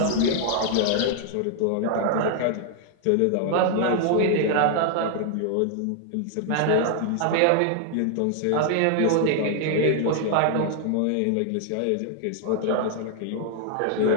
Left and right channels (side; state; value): both; different; correlation 0.00